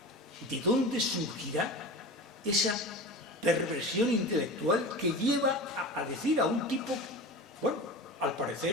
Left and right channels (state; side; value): normal; both; correlation 0.31